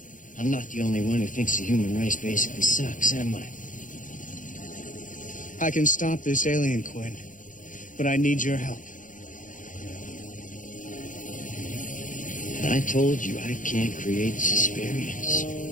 I'm not the only one who thinks the human race basically sucks, am I? I can stop this alien, Quinn. But I need your help. I told you I can't create Susperience.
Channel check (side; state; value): right; late; 0.38 ms